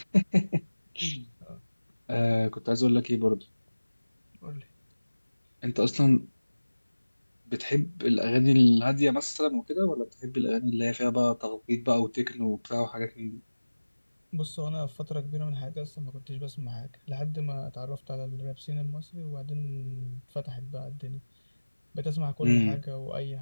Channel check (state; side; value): inverted; both; correlation -1.00